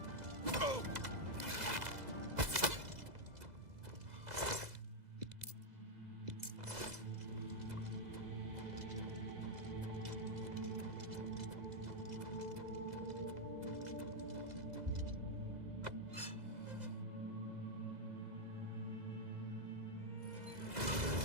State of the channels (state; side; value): late; left; 2.0 ms